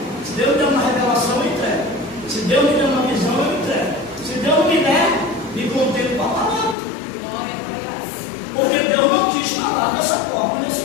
Se Deus me der uma revelação, eu entrego. Se Deus me der uma visão, eu entrego. Se Deus não me der, me contento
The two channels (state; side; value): drops out; right; at 6.8 s